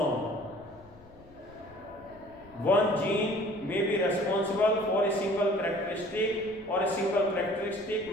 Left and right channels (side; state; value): left; noise; rumble, 24 dB below the sound